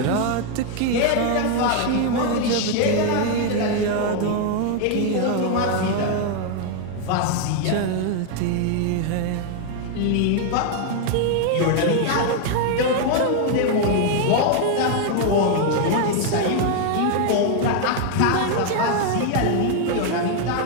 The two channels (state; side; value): different; both; correlation 0.00